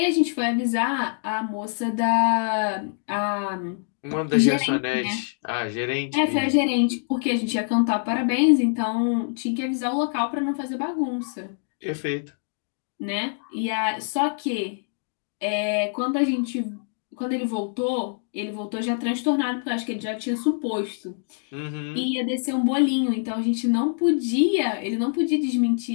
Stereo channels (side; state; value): right; silent; 62 dB below the other